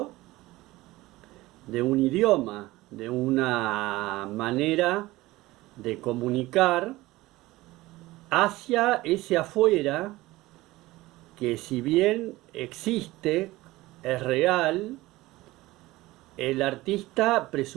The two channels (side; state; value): left; quieter; 18.7 dB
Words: de un idioma, de una manera de comunicar hacia ese afuera que, si bien existe, es real. El artista